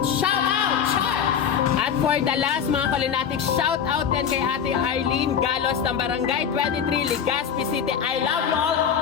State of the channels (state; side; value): quieter; right; 7.8 dB